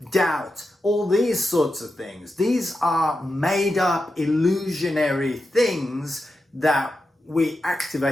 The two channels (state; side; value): normal; both; correlation 0.89